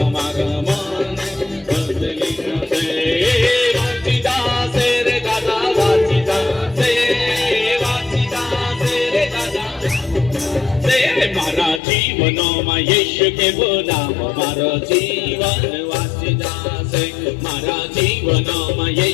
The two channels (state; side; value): drops out; right; at 11.8 s